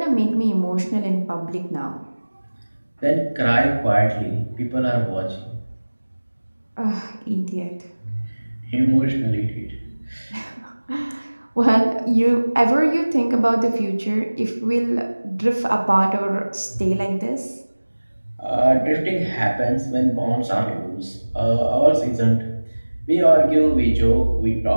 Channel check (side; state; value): both; inverted; correlation -1.00